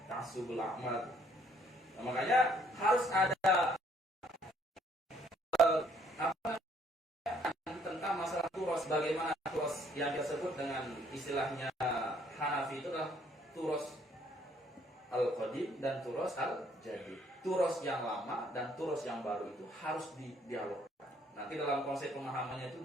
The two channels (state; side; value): normal; both; correlation 0.65